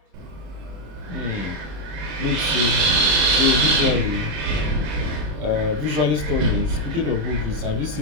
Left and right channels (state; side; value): late; left; 27 ms